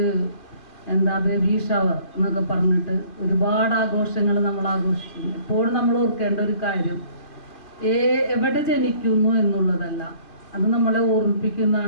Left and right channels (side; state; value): right; late; 2.3 ms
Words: ബേബി ഷവർ എന്നൊക്കെ പറഞ്ഞിട്ട് ഒരുപാട് ആഘോഷങ്ങൾ നമ്മൾ ആഘോഷിക്കുന്നു. എപ്പോഴും നമ്മൾ ഓർക്കേണ്ട ഒരു കാര്യം എവിടെ ജനിക്കുന്നു എന്നുള്ളതല്ല, അത് നമ്മളെ